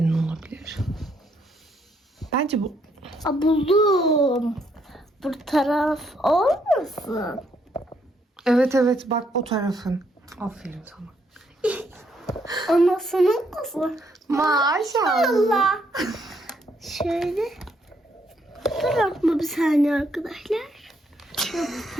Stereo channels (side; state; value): both; normal; correlation 0.73